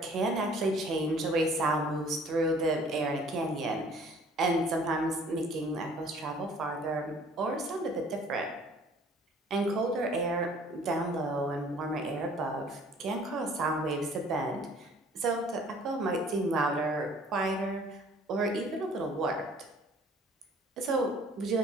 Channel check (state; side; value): normal; both; correlation 0.54